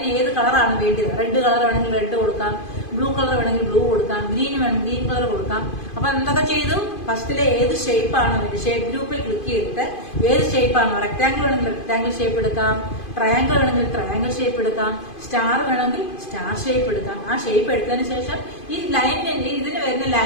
ഏത് കളറാണ് വേണ്ടത്? റെഡ് കളർ വേണമെങ്കിൽ റെഡ് കൊടുക്കാം, ബ്ലൂ കളർ വേണമെങ്കിൽ ബ്ലൂ കൊടുക്കാം, ഗ്രീൻ വേണമെങ്കിൽ ഗ്രീൻ കളർ കൊടുക്കാം. അപ്പൊ എന്തൊക്കെ ചെയ്തു? ഫസ്റ്റിലെ ഏത് ഷേപ്പ് ആണ് വേണ്ടത്, ഷേപ്പ് ഗ്രൂപ്പിൽ ക്ലിക്ക് ചെയ്തിട്ട് ഏത് ഷേപ്പ് ആണോ, റെക്ടാങ്കിൾ വേണമെങ്കിൽ റെക്ടാങ്കിൾ ഷേപ്പ് എടുക്കാം, ട്രയാങ്കിൾ വേണമെങ്കിൽ ട്രയാങ്കിൾ ഷേപ്പ് എടുക്കാം, സ്റ്റാർ വേണമെങ്കിൽ സ്റ്റാർ ഷേപ്പ് എടുക്കാം. ആ ഷേപ്പ് എടുത്തതിന് ശേഷം ഈ ലൈനിന്റെ, ഇതിന് വരുന്ന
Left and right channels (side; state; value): right; late; 2.5 ms